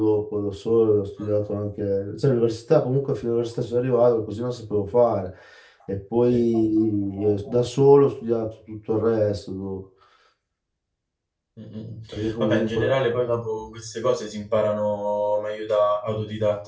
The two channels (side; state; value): both; identical; correlation 1.00